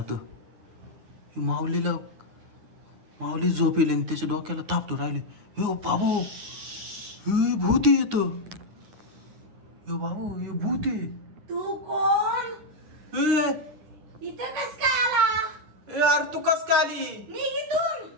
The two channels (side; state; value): left; late; 9.7 ms